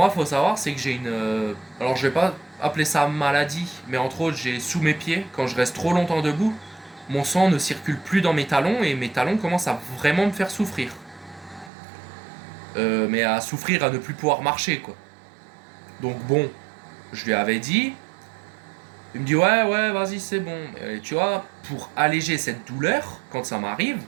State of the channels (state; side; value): drops out; left; at 11.7 s